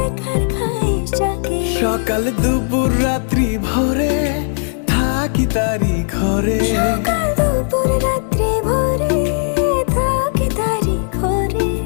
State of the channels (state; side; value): silent; right; digital silence